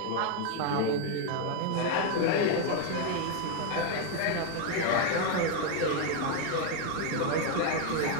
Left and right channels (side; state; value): both; different; correlation 0.01